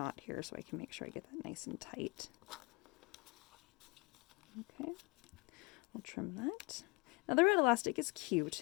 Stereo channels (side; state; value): right; quieter; 26.7 dB